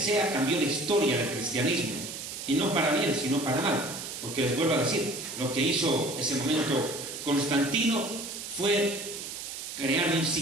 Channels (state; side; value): noise; right; hiss, 8 dB below the sound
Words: cambió la historia del cristianismo, y no para bien, sino para mal, porque les vuelvo a decir, lo que hizo ese momento Constantino fue crear un